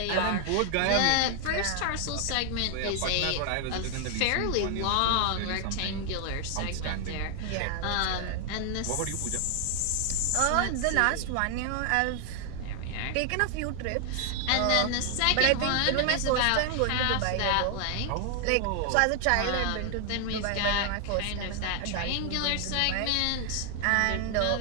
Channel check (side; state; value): both; different; correlation 0.00